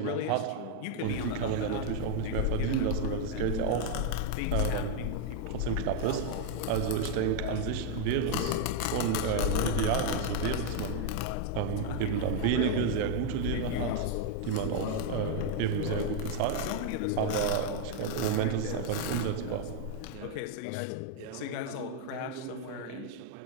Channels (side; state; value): both; different; correlation 0.00